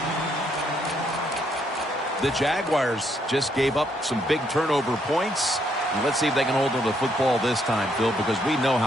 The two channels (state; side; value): normal; both; correlation 0.72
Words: The Jaguars just gave up some big turnover points. And let's see if they can hold on to the football this time, Phil, because we know